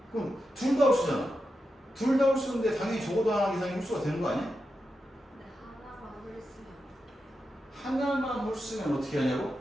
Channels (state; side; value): normal; both; correlation 0.88